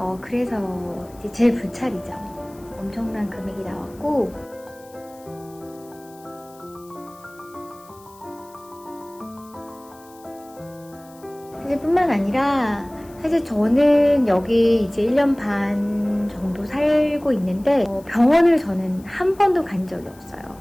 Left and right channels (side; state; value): left; noise; hiss, 26 dB below the sound